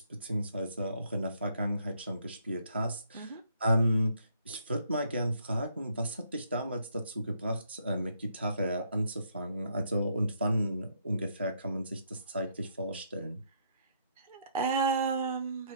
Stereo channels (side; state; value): both; inverted; correlation -0.71